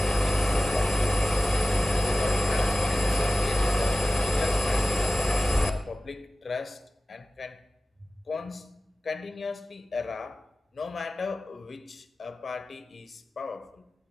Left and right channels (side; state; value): both; normal; correlation 0.96